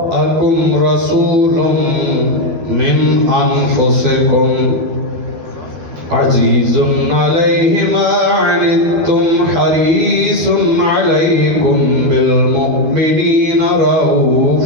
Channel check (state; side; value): late; left; 12 ms